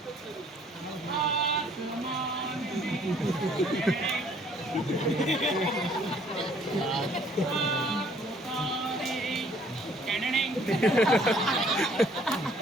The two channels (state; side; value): normal; both; correlation 0.60